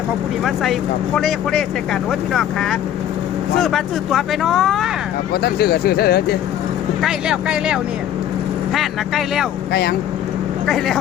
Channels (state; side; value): quieter; right; 10.9 dB